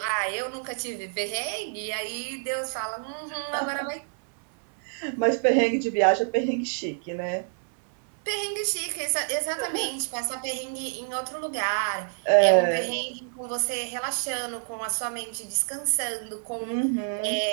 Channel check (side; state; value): left; silent; 60 dB below the other